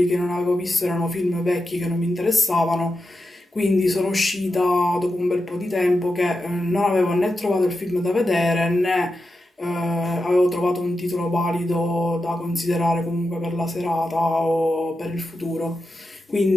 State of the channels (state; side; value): normal; both; correlation 0.89